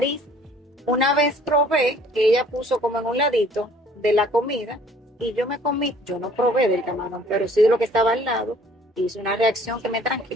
Una vez probé que ella puso como en un ladito de la comida y yo me comí, yo no probé del camarón, pero sí de lo que estaba al lado, hice una reacción que me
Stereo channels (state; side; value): normal; both; correlation 0.55